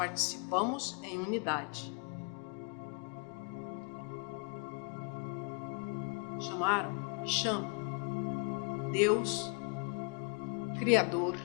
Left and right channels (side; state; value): right; quieter; 36.3 dB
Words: em unidade. Chamaram e chamam Deus, Criador,